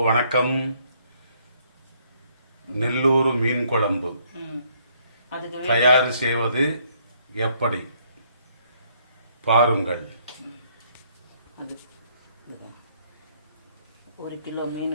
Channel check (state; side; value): inverted; both; correlation -0.68